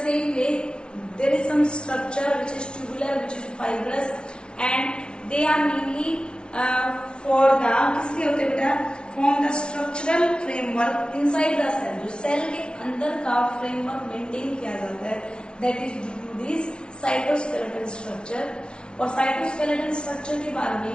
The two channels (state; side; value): late; right; 0.056 ms